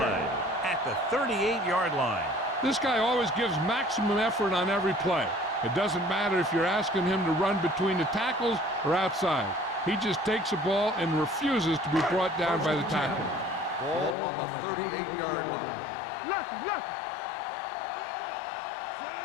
at the 38-yard line. This guy always gives maximum effort on every play. It doesn't matter if you're asking him to run between the tackles or outside. He just takes the ball and refuses to be brought down by the tackle. Ball on the 38-yard line. Let's go, defense.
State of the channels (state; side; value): drops out; right; at 14.2 s